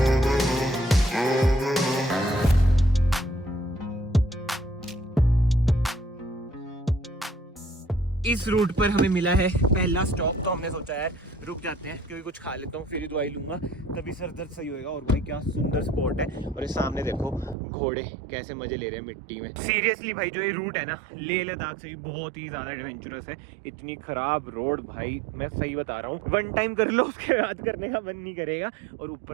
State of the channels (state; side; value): drops out; left; at 17.6 s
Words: इस रूट पर हमें मिला है पहला स्टॉप, तो हमने सोचा यार रुक जाते हैं, क्योंकि कुछ खा लेता हूँ फिर ही दवाई लूंगा, तभी सर दर्द सही होएगा। और भाई क्या सुंदर स्पॉट है। और ये सामने देखो घोड़े कैसे मजे ले रहे हैं मिट्टी में। सीरियसली भाई जो ये रूट है ना लेह लद्दाख से भी बहुत ही ज्यादा एडवेंचरस है। इतनी खराब रोड भाई, मैं सही बता रहा हूँ, 1 टाइम कर लो उसके बाद करने का मन नहीं करेगा। और